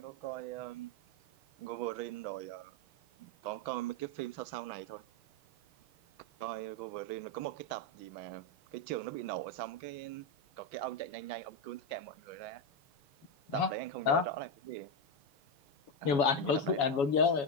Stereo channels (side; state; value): right; late; 7.1 ms